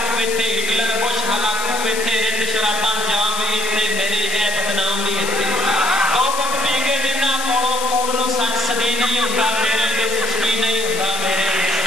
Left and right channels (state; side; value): noise; left; hiss, 6 dB below the sound